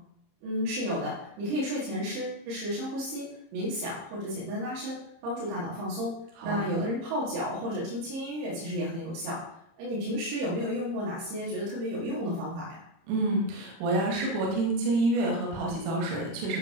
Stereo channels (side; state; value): left; late; 30 ms